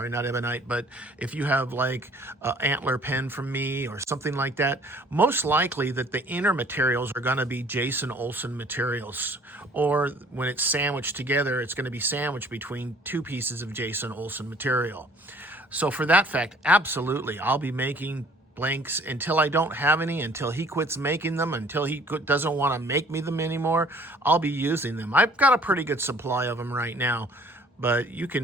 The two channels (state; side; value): normal; both; correlation 0.55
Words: not ebonite, but if you have like an antler pen from me or something like that, most likely that the inner materials are going to be Jason Olsen materials, or when it's sandwiched together, it's going to be sandwiched between two pieces of Jason Olsen material. So for that fact, absolutely, I'll be making blanks until I don't have any, until he quits making them, until he doesn't want to make me them anymore. I'll be using them. I've got a pretty good supply of them right now, but you